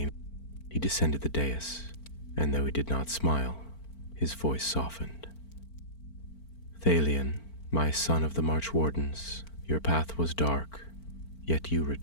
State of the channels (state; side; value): late; right; 4.4 ms